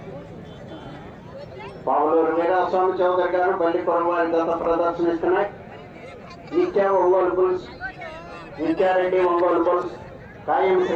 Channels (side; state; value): both; identical; correlation 1.00